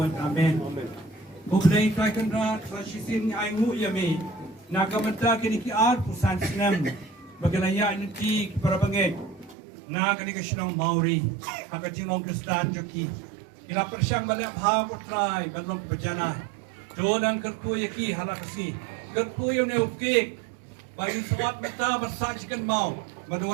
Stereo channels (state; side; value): drops out; left; at 9.6 s